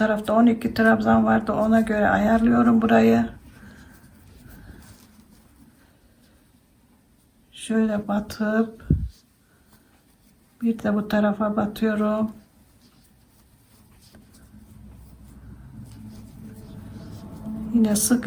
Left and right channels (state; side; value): identical; both; correlation 1.00